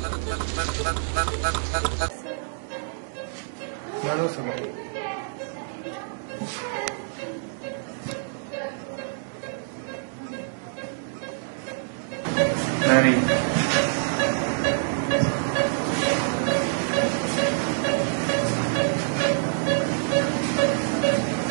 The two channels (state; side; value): silent; left; digital silence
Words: لا لو سمحت. ناري.